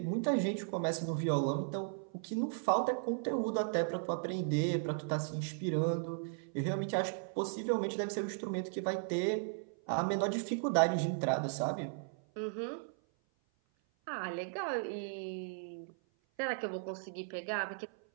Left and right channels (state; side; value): silent; left; 54 dB below the other